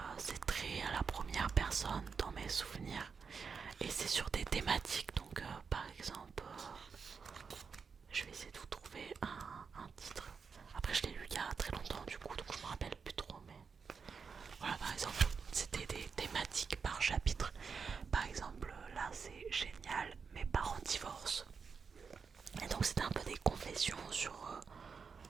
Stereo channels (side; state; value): left; quieter; 5.6 dB